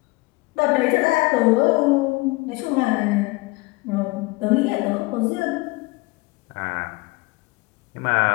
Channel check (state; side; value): quieter; right; 23.1 dB